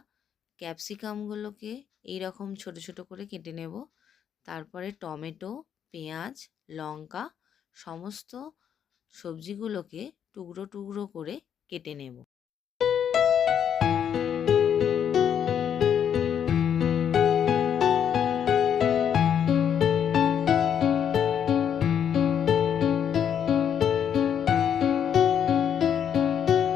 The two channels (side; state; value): right; quieter; 8.6 dB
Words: ক্যাপসিকামগুলোকে এইরকম ছোট ছোট করে কেটে নেব। তারপরে টমেটো, পেঁয়াজ, লঙ্কা সমস্ত সবজিগুলোকে টুকরো টুকরো করে কেটে নেব।